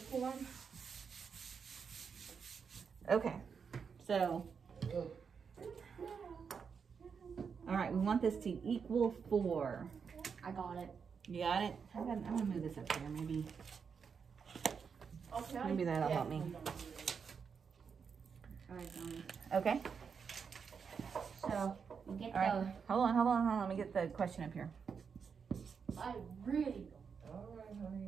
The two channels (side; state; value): left; quieter; 6.2 dB